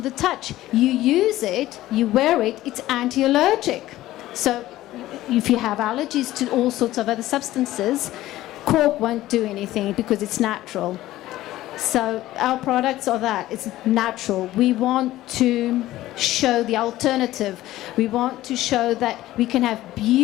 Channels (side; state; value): right; quieter; 15.5 dB